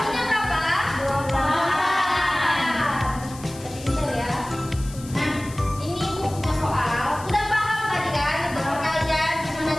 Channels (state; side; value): noise; left; hiss, 17 dB below the sound